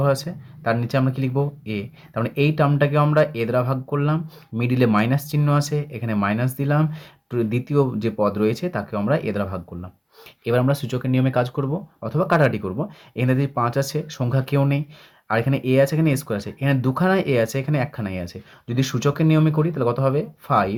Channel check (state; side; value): identical; both; correlation 1.00